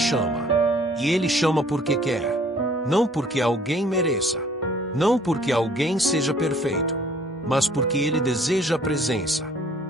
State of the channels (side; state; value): both; normal; correlation 0.57